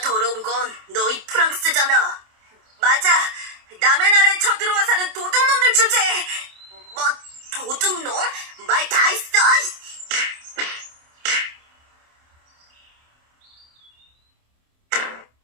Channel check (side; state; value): left; late; 27 ms